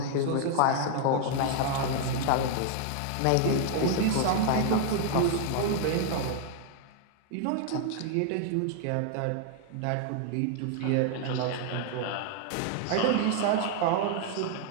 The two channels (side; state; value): both; different; correlation 0.00